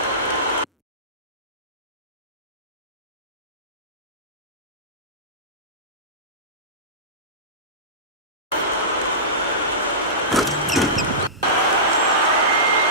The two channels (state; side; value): normal; both; correlation -0.20